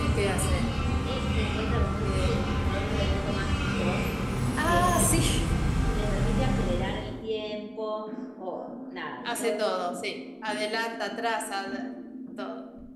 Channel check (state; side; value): identical; both; correlation 1.00